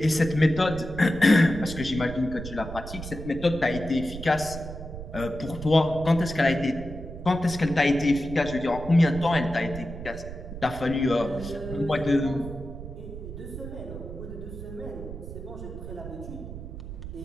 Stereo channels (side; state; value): right; noise; rumble, 10 dB below the sound